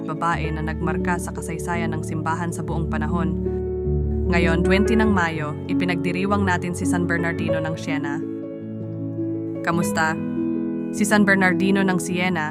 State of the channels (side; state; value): both; identical; correlation 1.00